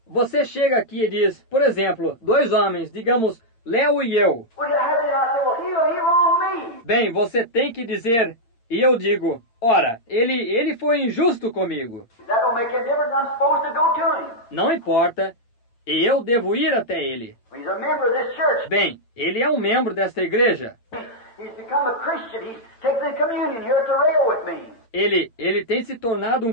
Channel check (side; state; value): right; late; 8.8 ms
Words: Você chega aqui e diz, por exemplo, dois homens, digamos, Léo e eu. Well, you have it, and I say, well, he wronged me. Bem, você tem que dizer, e eu digo, ora, ele foi injusto comigo. That don't make any difference. I'm supposed to go to him. Não importa, e eu devo ir até ele. He's a member of this church. Bem, ele é um membro desta igreja. He's become a Christian. He's taken the communion here at the rail with me. Ele tem se tornado